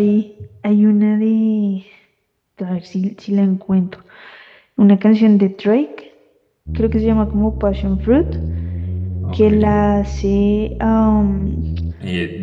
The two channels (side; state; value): both; identical; correlation 1.00